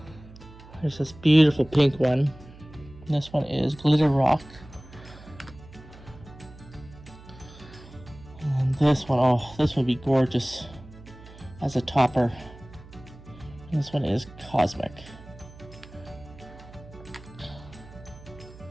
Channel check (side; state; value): right; noise; hum, 19 dB below the sound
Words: There's this beautiful pink one. This one is Glitter Rock. And this one, oh, this would be gorgeous as a topper. This one is Cosmic.